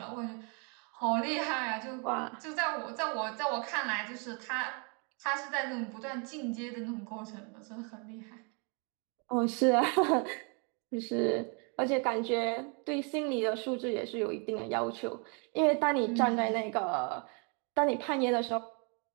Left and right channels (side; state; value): left; quieter; 35.6 dB